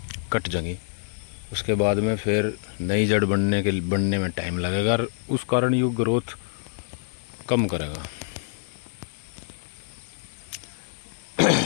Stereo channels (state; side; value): silent; right; 61 dB below the other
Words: कट जाएंगी। उसके बाद में फिर नई जड़ बनने में टाइम लगेगा और उस कारण ये ग्रोथ कम करेगा।